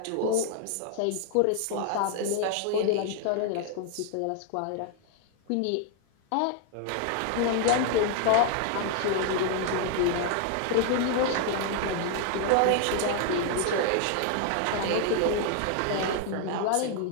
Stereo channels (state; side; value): different; both; correlation 0.00